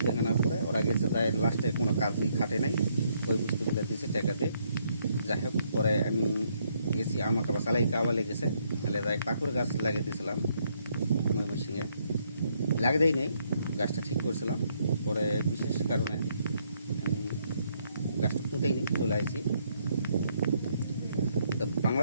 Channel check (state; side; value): inverted; both; correlation -0.72